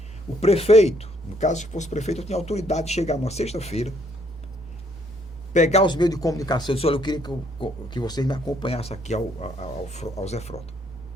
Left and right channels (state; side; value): normal; both; correlation 0.67